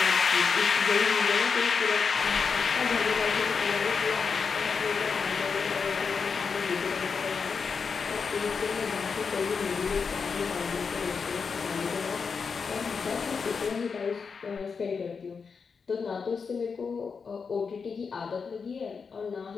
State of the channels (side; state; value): right; quieter; 5.5 dB